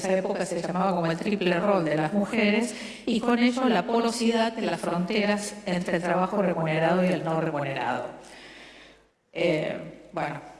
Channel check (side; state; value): both; identical; correlation 1.00